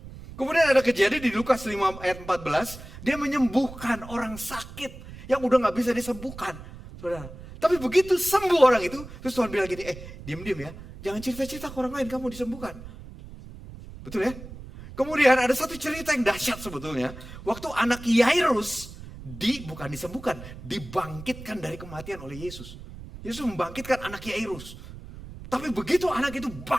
Kemudian ada kejadian di Lukas 5 ayat 14, dia menyembuhkan orang sakit yang udah gak bisa disembuhkan. Saudara. Tapi begitu sembuh orang itu, terus Tuhan bilang gini, diam-diam ya, jangan cerita-cerita ke orang lain kamu disembuhkan. Betul ya? Kemudian ada satu cerita yang dahsyat sebetulnya, waktu anak Yairus bukan disembuhkan, dibangkitkan dari kematian oleh Yesus. Yesus membangkitkan anak Yairus. Tapi begitu anak itu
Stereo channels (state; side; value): noise; right; rumble, 14 dB below the sound